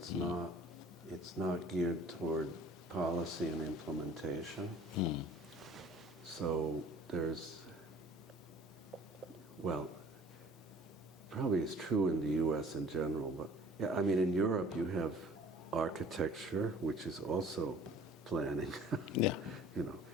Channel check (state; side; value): normal; both; correlation 0.50